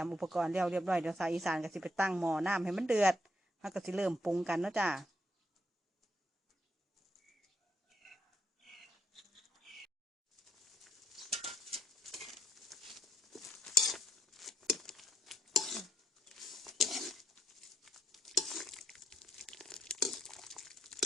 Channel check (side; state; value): both; normal; correlation 0.73